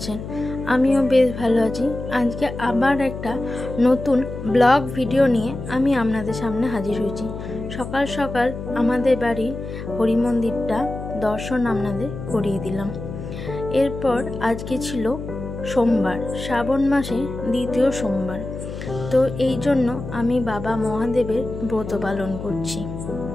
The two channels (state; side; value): noise; left; hum, 9 dB below the sound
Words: আমিও বেশ ভালো আছি। আজকে আবার একটা নতুন ব্লগ ভিডিও নিয়ে আমি আপনাদের সামনে হাজির হয়েছি। সকাল সকাল আমাদের বাড়ির হরি মন্দিরটা দর্শন আপনাদের করিয়ে দিলাম। এরপর আজকে ছিল সোমবার, শ্রাবণ মাসে দ্বিতীয় সোমবার। তো এই জন্য আমি বাবা মহাদেবের ব্রত পালন করছি।